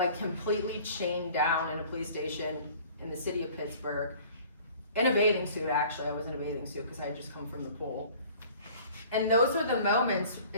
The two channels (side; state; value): both; inverted; correlation -0.49